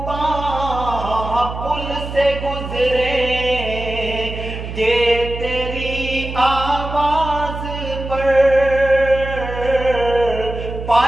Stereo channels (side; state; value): right; noise; hum, 8 dB below the sound